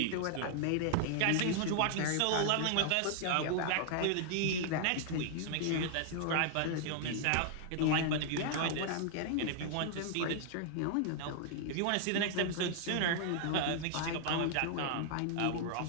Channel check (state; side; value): different; both; correlation -0.01